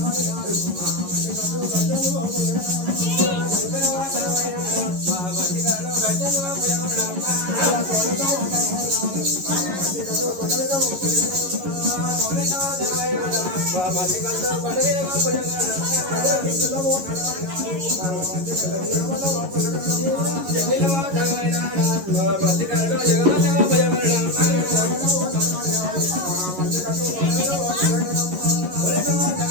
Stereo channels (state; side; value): late; left; 11 ms